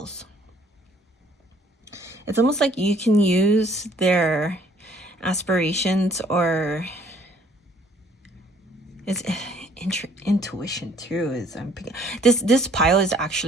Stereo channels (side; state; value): both; normal; correlation 0.60